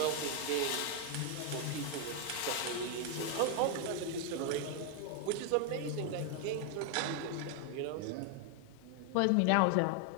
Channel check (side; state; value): both; different; correlation 0.01